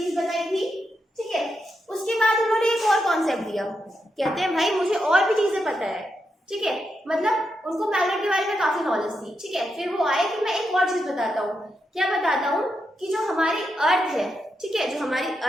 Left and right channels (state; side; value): normal; both; correlation 0.84